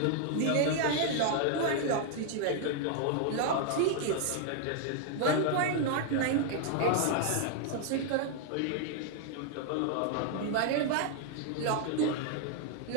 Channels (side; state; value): both; different; correlation 0.00